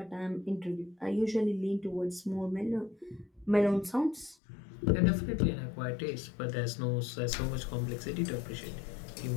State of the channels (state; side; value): drops out; right; at 4.4 s